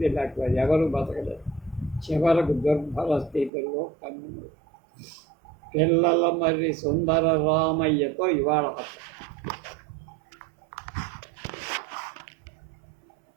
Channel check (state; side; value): drops out; left; at 3.5 s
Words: లేకపోతే ఎవరు బతకలేదు. చివరకు దుర్భర స్థితిలో కన్ను. పిల్లల మర్రి సుందర రామయ్యతో ఇవాళ